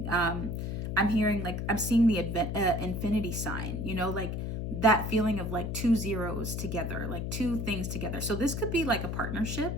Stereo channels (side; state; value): left; noise; hum, 3 dB below the sound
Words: I'm hearing like, I'm seeing the infinity sign, you know, like that feeling of like two zeros together, like two things together. So this could be like a partnership